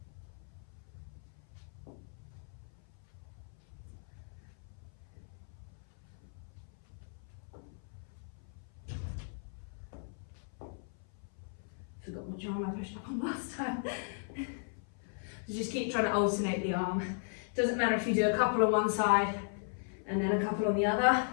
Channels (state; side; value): silent; right; 53 dB below the other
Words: Forgot what arm I pushed up on last time. So just keep trying to alternate the arm. Doesn't matter if you do a couple on one side and then a couple on the other,